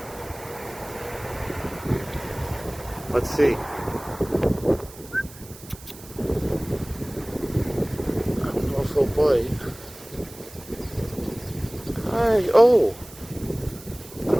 Let's see. I don't know if he'll bite. Hi. Oh. I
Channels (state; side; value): noise; right; hiss, 19 dB below the sound